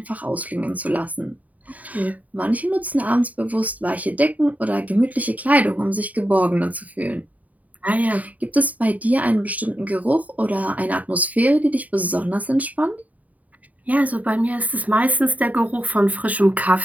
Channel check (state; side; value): late; left; 0.072 ms